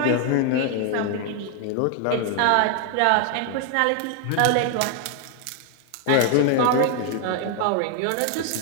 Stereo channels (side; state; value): both; different; correlation 0.00